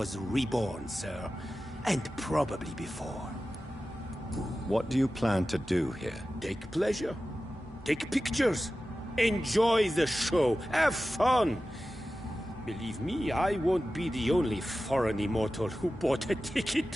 reborn, sir. And probably before. What do you plan to do here? Take pleasure. Take pictures. Enjoy the show. Have fun. Believe me, I won't be the only foreign immortal who bought a ticket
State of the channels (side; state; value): both; normal; correlation 0.95